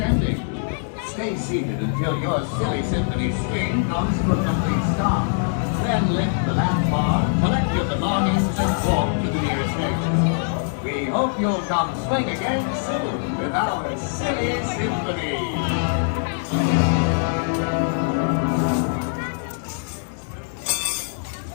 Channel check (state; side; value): silent; right; digital silence